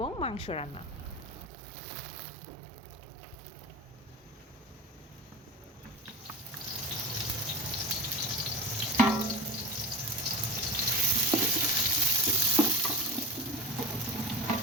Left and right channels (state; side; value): normal; both; correlation 0.28